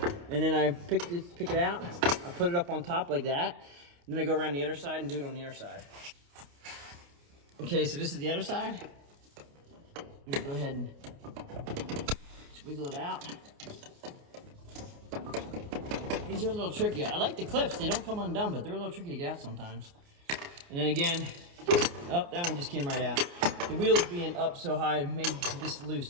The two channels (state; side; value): late; left; 29 ms